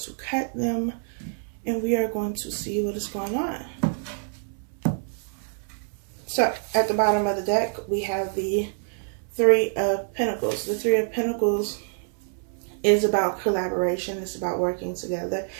cut them and we are going to see what is going on. So at the bottom of the deck, we have the Three of Pentacles. The Three of Pentacles is about collaboration. It's about working together.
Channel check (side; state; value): left; silent; 61 dB below the other